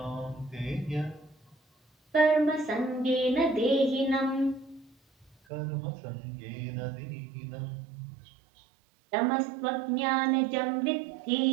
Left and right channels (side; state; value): left; drops out; at 5.4 s